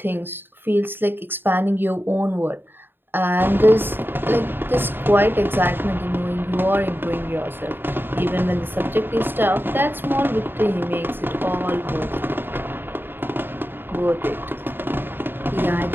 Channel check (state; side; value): late; left; 0.098 ms